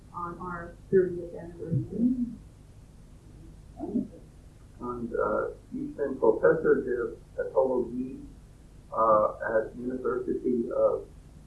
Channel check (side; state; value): both; identical; correlation 1.00